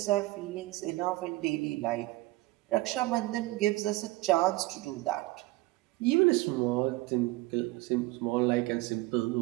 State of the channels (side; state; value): left; quieter; 20.0 dB